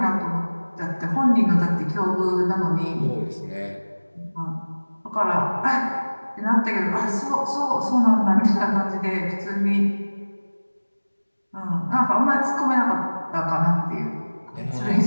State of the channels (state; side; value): inverted; both; correlation -1.00